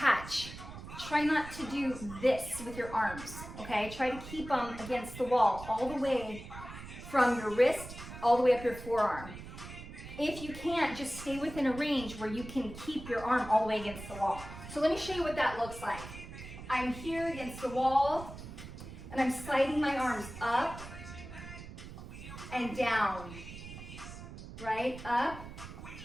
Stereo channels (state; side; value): noise; right; rumble, 12 dB below the sound